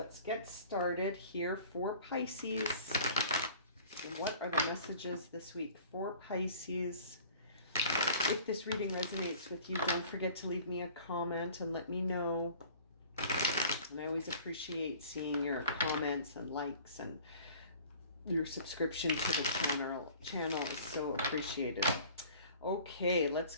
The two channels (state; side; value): inverted; both; correlation -0.47